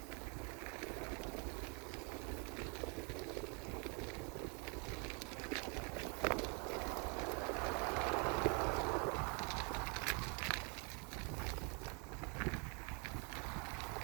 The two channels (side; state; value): left; quieter; 35.0 dB